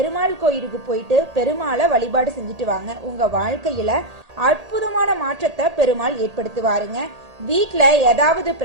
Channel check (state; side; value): late; left; 1.8 ms